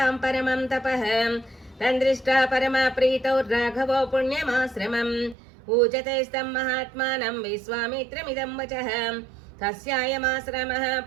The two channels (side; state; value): left; drops out; at 5.4 s